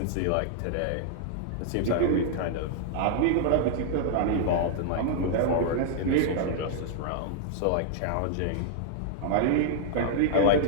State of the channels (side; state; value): both; different; correlation -0.01